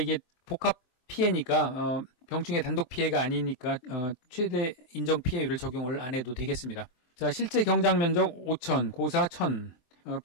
복합 피해니까 병충해 단독 피해가 아니니까 최대 인정 피해율을 적용을 안 해도 되겠습니다. 자, 실제 경작 면적 5,000, 고사 1,000,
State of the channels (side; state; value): right; late; 24 ms